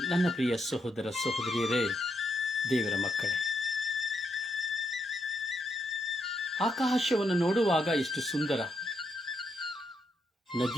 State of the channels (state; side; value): normal; both; correlation 0.79